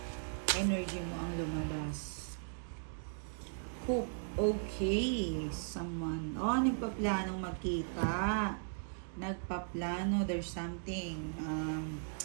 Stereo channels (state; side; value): silent; left; digital silence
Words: energy mo ang lumabas. Hope. Okay. Someone. Nagpaplanong magkita. Nagpaplano. There's something.